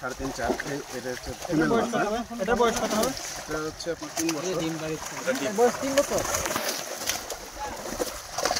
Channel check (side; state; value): both; identical; correlation 1.00